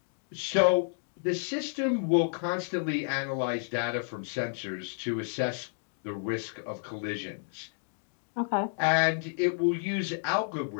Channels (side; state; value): right; silent; digital silence